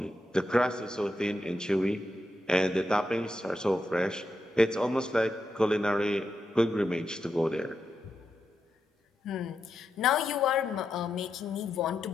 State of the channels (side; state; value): both; normal; correlation 0.85